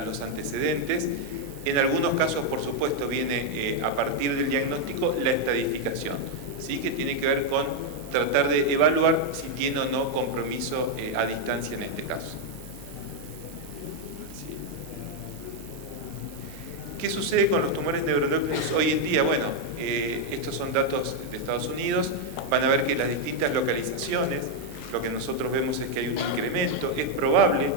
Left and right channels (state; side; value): normal; both; correlation 0.01